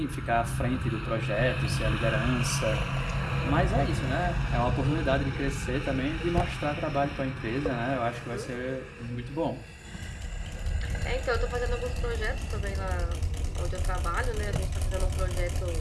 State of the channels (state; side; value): identical; both; correlation 1.00